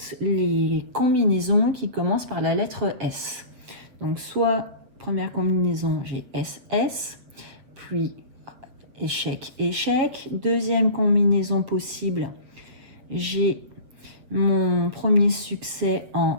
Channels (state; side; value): late; left; 8.0 ms